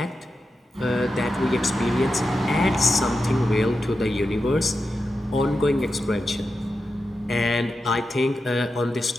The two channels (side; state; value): both; normal; correlation 0.90